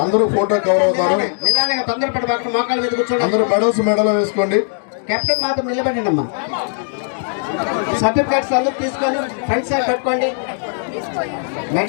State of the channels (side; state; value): right; silent; digital silence